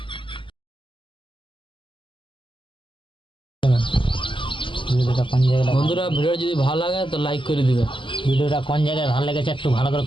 ভিডিওটা কোন জায়গায় বন্ধুরা ভিডিও যদি ভালো লাগে তো লাইক করে দিবে ভিডিওটা কোন জায়গায় ভালো লেগেছে একটু ভালো করে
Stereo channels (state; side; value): late; right; 0.25 ms